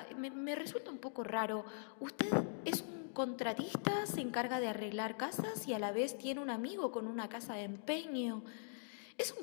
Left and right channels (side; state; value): right; silent; digital silence